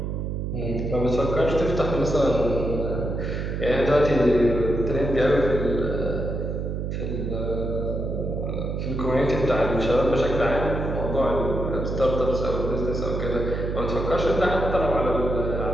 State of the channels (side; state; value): right; noise; hum, 3 dB below the sound